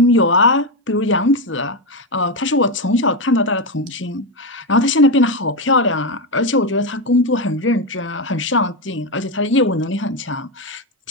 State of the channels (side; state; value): both; normal; correlation 0.10